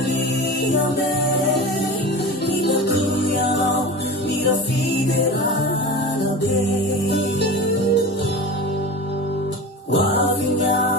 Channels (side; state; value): both; normal; correlation 0.31